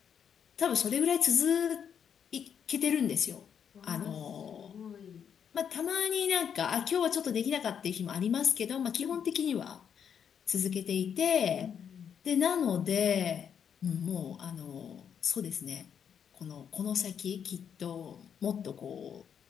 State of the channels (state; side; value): quieter; right; 7.9 dB